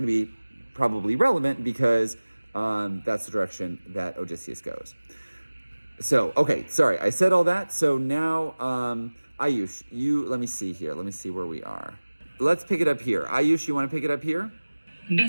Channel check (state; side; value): inverted; both; correlation -1.00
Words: to be probably relevant because that's the direction that Odysseus goes. So, okay, sorry, I said all that. So now, Ayush, let me see here. Let me see where we are. Let's pick it up here. Ayush, you want to pick it up here?